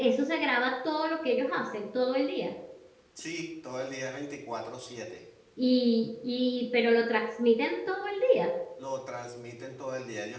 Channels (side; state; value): both; identical; correlation 1.00